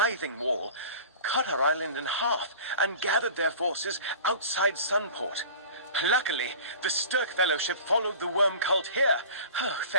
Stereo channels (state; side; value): inverted; both; correlation -0.40